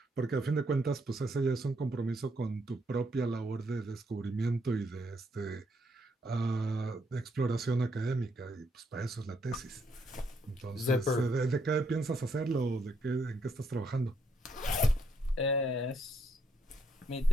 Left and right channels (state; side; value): normal; both; correlation 0.74